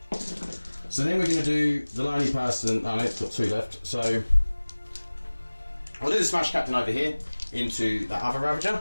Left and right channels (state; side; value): inverted; both; correlation -1.00